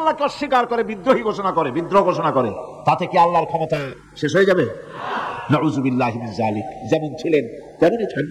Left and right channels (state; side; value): identical; both; correlation 1.00